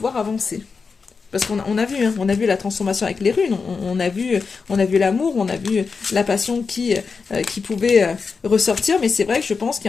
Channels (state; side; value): quieter; right; 5.0 dB